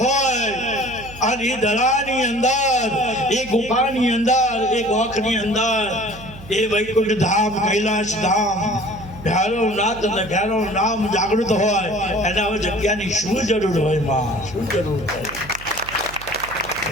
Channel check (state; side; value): noise; right; hum, 17 dB below the sound